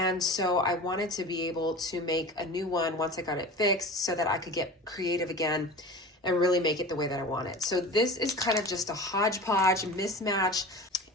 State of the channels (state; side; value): normal; both; correlation 0.35